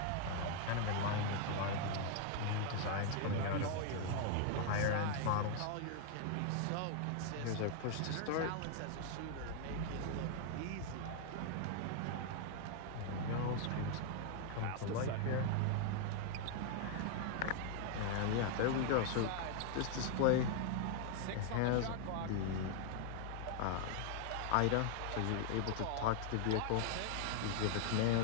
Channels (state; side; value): different; both; correlation 0.00